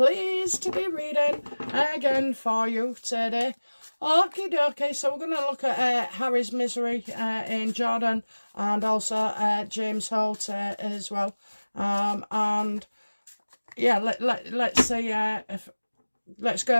to be reading again for you today. Okie dokie, so we're going to look at Harry's misery in Jordan, and also James Holt as well. And yeah, let's see, let's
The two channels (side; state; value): both; inverted; correlation -1.00